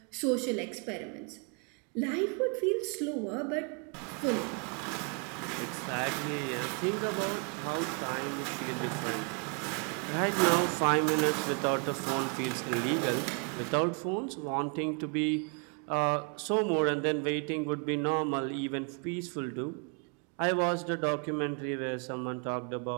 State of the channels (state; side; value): quieter; left; 37.8 dB